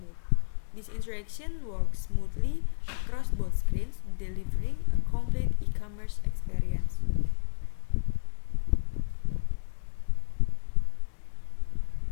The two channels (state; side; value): silent; right; digital silence